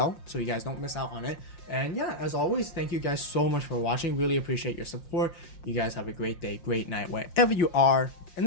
so you guys don't miss out on it. And yeah, as always, thank you guys so much for watching. Really appreciate your support. You guys have a great day, great night, wherever you are. And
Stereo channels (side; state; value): right; late; 5.7 ms